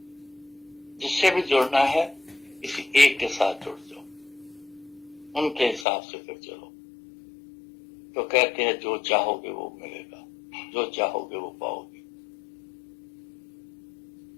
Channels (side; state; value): right; drops out; at 5.9 s